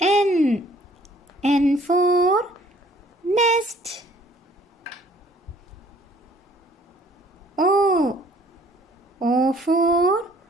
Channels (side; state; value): both; normal; correlation 0.58